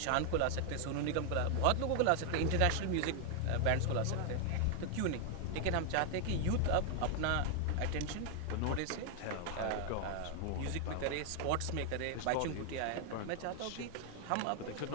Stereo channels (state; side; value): different; both; correlation 0.00